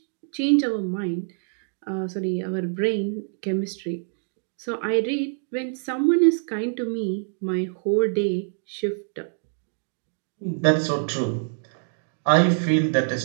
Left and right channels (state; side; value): silent; left; digital silence